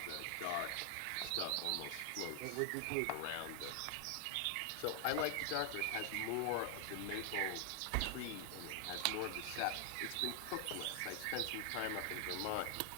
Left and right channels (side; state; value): both; different; correlation 0.00